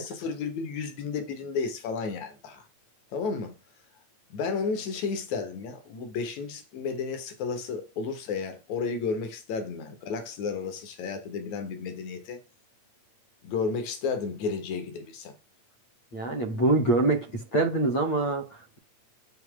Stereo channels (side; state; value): right; late; 9.3 ms